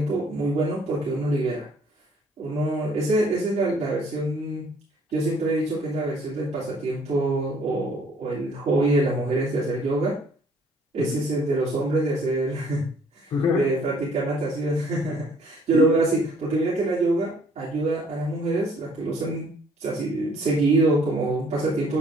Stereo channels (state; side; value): normal; both; correlation 0.60